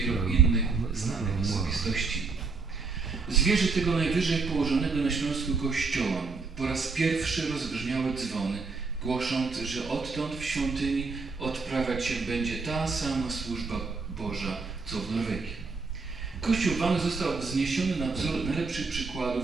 innych znanych osobistości. Zwierzę tego najwyżej położonego na Śląsku kościoła po raz pierwszy rozbrzmiały dzwony, głosząc, że odtąd w świątyni odprawiać się będzie ta sama służba Boża, co w Norwegii. Kościół Wang został wzniesiony na wzór najlepszych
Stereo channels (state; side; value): quieter; left; 4.4 dB